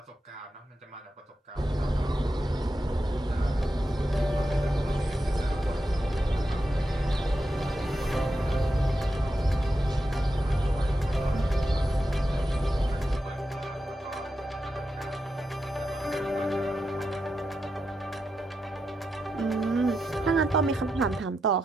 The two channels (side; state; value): both; normal; correlation 0.87